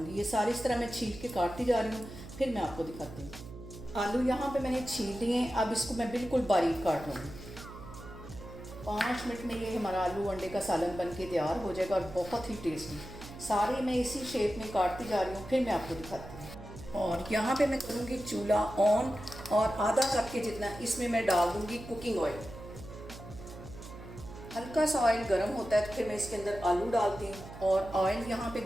ये सारी इस तरह मैं छील के काटती जा रही हूँ, फिर मैं आपको दिखाती हूँ। आलू यहाँ पे मैंने छील लिए हैं, अब इसको मैं बिल्कुल बारीक काट लूँगी। 5 मिनट में ये हमारा आलू अंडे का सालन बन के तैयार हो जाएगा और बहुत ही टेस्टी। सारे मैं इसी शेप में काटती जा रही हूँ, फिर मैं आपको दिखाती हूँ। और यहाँ पे मैं करूँगी चूल्हा ऑन और आधा कप के जितना इसमें मैं डाल दूँगी कुकिंग ऑयल। हल्का सा ऑयल गर्म होता है तो फिर मैं इसके अंदर आलू डालती हूँ। और ऑयल यहाँ पे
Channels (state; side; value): noise; right; hum, 14 dB below the sound